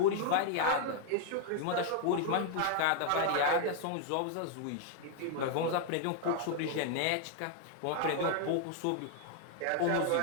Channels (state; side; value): different; both; correlation 0.00